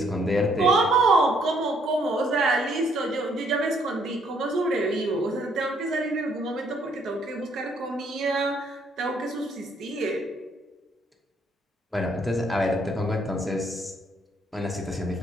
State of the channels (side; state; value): both; normal; correlation 0.68